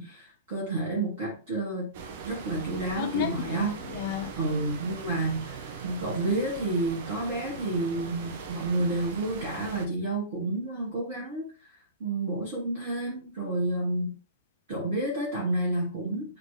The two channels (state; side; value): inverted; both; correlation -0.38